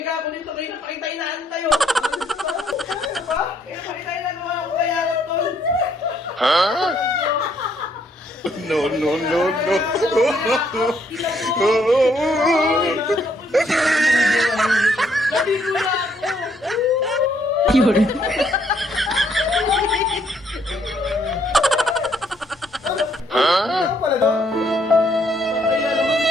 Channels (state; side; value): normal; both; correlation 0.70